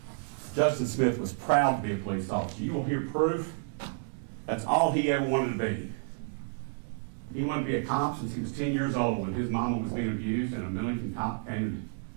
Justin Smith was proud to be a police officer. You will hear proof that's all he ever wanted to be. He wanted to be a cop since he was 10 years old when his mama was being abused and a Millington cop came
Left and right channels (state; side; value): silent; left; 58 dB below the other